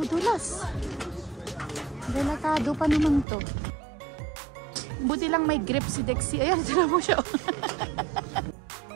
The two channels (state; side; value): drops out; left; at 3.2 s